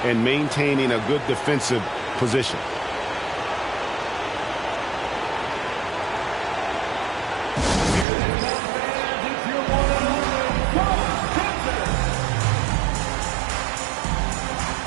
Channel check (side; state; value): left; drops out; at 8.1 s